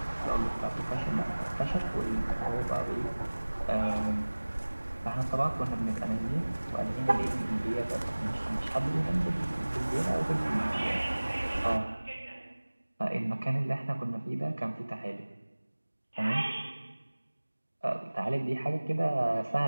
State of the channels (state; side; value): inverted; both; correlation -1.00